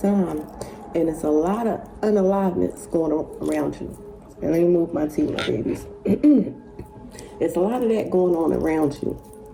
and it's a lot of unaliveness going on around you. And let me move my tea, my babies. It's a lot of that going on around you.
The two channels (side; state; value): both; identical; correlation 1.00